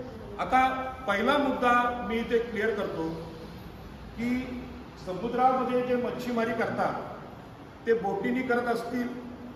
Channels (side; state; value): both; identical; correlation 1.00